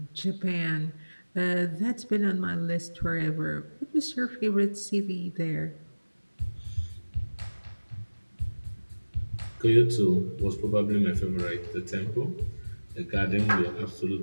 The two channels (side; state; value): both; inverted; correlation -1.00